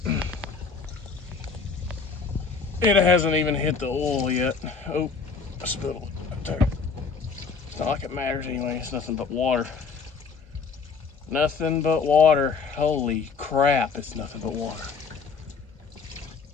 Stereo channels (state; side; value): quieter; right; 5.1 dB